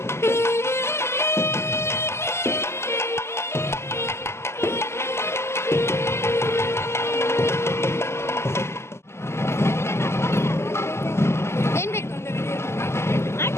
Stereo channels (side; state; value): right; late; 0.13 ms